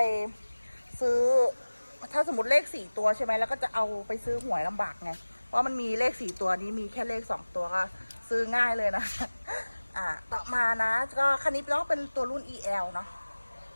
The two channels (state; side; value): inverted; both; correlation -1.00